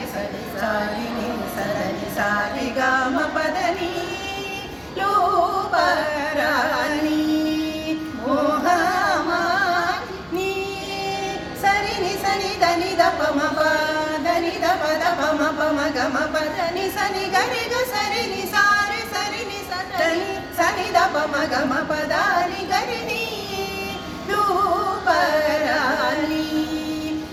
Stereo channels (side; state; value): both; identical; correlation 1.00